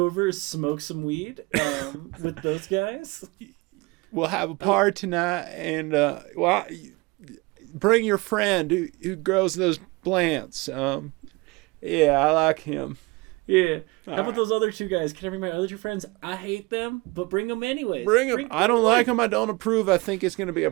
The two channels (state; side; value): quieter; left; 24.7 dB